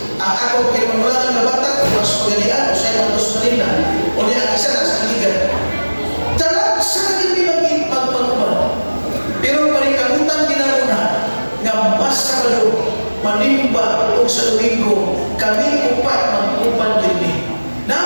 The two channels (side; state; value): both; inverted; correlation -1.00